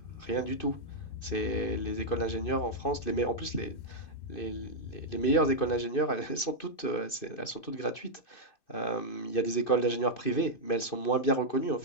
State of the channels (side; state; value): right; late; 2.6 ms